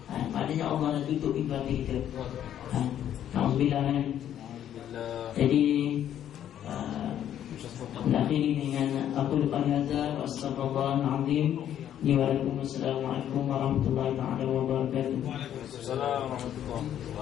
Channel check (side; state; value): right; quieter; 10.6 dB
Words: Maknanya Allah dah tutup pintu hati kita. Alhamdulillah kan. Jadi akhiri dengan aku depan hazar wa astagfirullahaladzim. Waalaikumsalam warahmatullahi wabarakatuh. Waalaikumsalam warahmatullahi